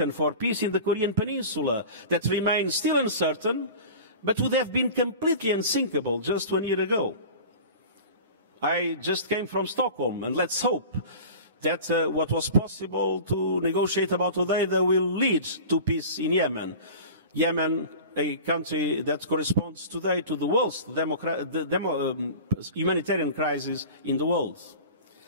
for peace in the Korean Peninsula that remain still uncertain, but would have been completely unsinkable just 1 year ago. I just came from Stockholm, and let's hope that what was possible to negotiate about today will lead to peace in Yemen. Yemen, a country that corresponds today to the worst humanitarian crisis in the world.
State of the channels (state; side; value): inverted; both; correlation -0.37